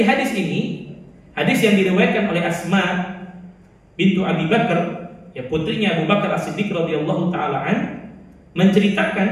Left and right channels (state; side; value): identical; both; correlation 1.00